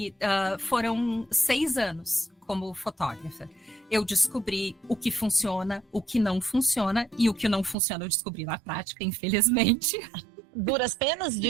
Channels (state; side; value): drops out; left; at 7.8 s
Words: foram 6 anos como fotógrafa. Eu descobri o que funciona, o que não funciona, e o que não funciona eu descobri na prática, infelizmente. Duras penas